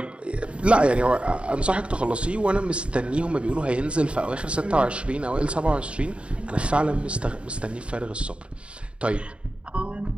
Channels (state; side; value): late; left; 0.058 ms